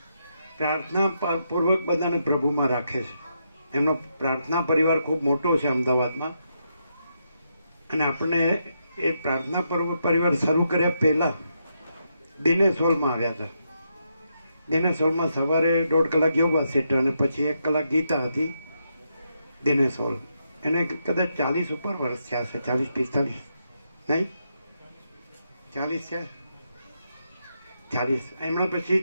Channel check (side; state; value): both; inverted; correlation -0.81